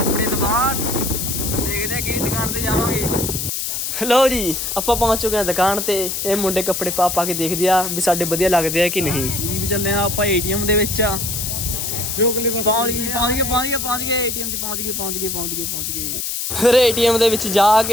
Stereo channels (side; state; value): left; noise; hiss, 3 dB below the sound